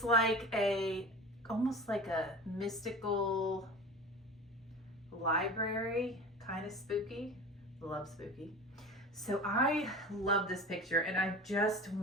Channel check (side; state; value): both; normal; correlation 0.35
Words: like almost like a mystical library, kind of spooky. Love spooky. So I love this picture and I just